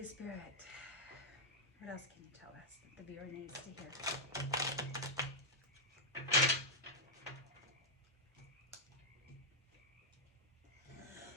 Spirit, what else can you tell us that the viewer needs to hear?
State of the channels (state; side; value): normal; both; correlation -0.04